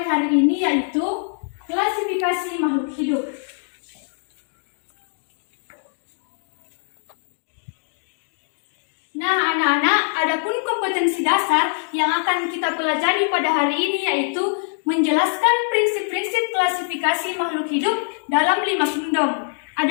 hari ini yaitu klasifikasi makhluk hidup. Nah, anak-anak, adapun kompetensi dasar yang akan kita pelajari pada hari ini yaitu menjelaskan prinsip-prinsip klasifikasi makhluk hidup dalam 5 kingdom.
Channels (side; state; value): right; silent; digital silence